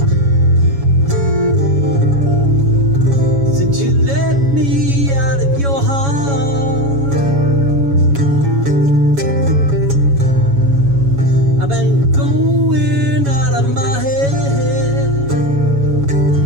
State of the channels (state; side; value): late; left; 7.2 ms